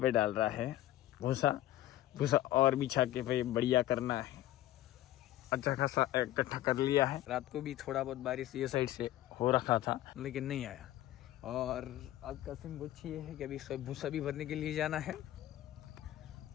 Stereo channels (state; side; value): quieter; right; 14.1 dB